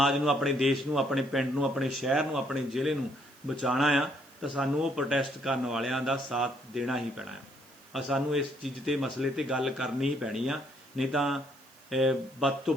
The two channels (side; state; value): right; noise; hiss, 27 dB below the sound